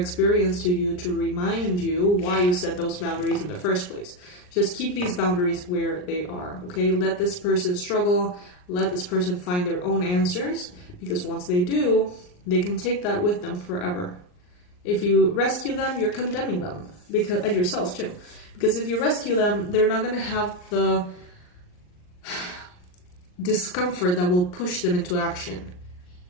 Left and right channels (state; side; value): late; right; 39 ms